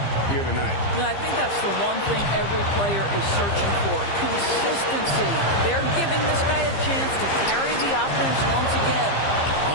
here tonight. No, I think that's the one thing every player is searching for. Consistency. They're giving this guy a chance to carry the offense once again.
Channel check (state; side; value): late; right; 15 ms